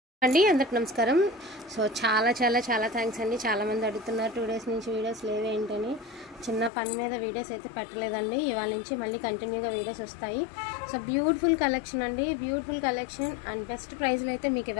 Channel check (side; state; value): right; drops out; at 6.7 s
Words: అండి అందరికి నమస్కారం. సో చాలా థ్యాంక్స్ అండి. చాలామంది అడుగుతున్నారు 2 డేస్ నుంచి వీడియోస్ లేవేంటని. చిన్న పని మీద వీడియోస్ అయితే పెట్టలేదండి. ఇవాళ నుంచి మళ్ళీ కంటిన్యూగా వీడియోస్ వస్తాయి. సో బ్యూటిఫుల్ కలెక్షన్ అండి, బ్యూటిఫుల్ కలెక్షన్ అండ్ బెస్ట్ ప్రైస్లో అయితే మీకు